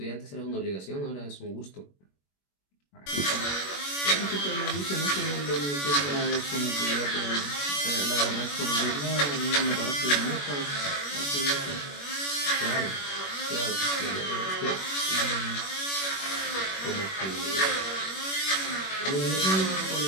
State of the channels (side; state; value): right; late; 21 ms